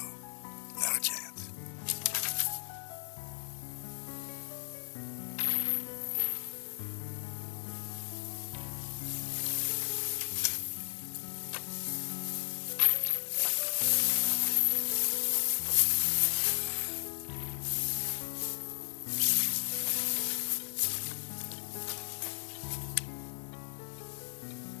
Not a chance.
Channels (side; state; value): right; silent; 55 dB below the other